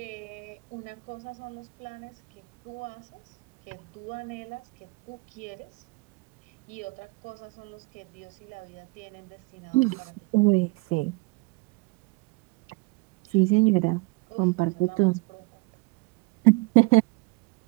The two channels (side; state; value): left; quieter; 24.8 dB